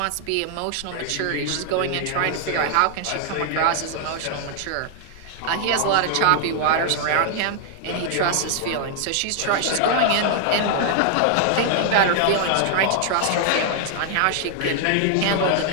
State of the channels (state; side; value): different; both; correlation 0.00